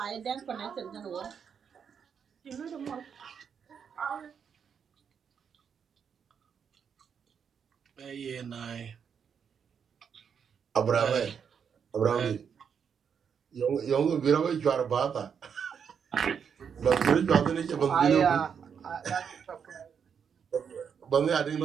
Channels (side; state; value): left; quieter; 7.1 dB